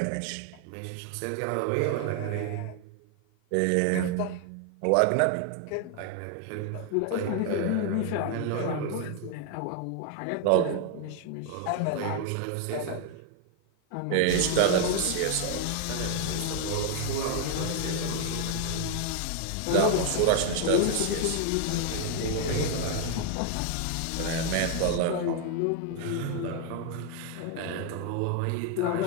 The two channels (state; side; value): different; both; correlation 0.00